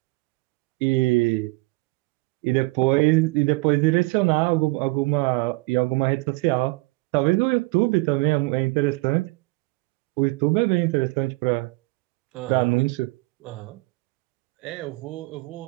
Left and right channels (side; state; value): left; quieter; 24.8 dB